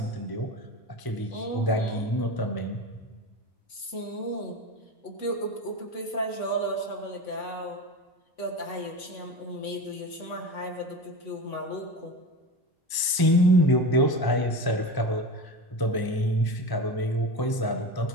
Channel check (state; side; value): late; right; 1.0 ms